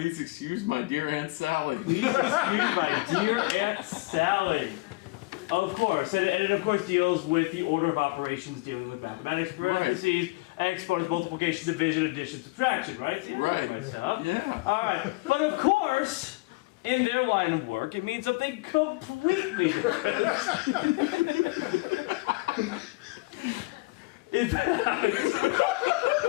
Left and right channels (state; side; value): quieter; right; 23.8 dB